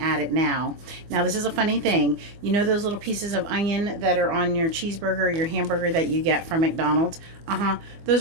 it now. Now this is a funny thing. You know those little pieces of onion that are on your cheeseburger, your hamburger that you get from McDonald's?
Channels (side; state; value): left; late; 24 ms